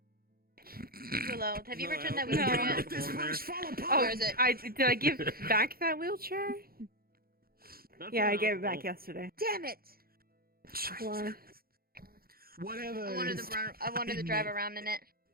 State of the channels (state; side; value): late; left; 0.43 ms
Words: Willow, have you returned that wheelchair yet? This place fall Where apart. is it? Did I give back that wheelchair? Yeah, I gave it back yesterday. Damn it! Why? Whatever. I wanted to drive around in it.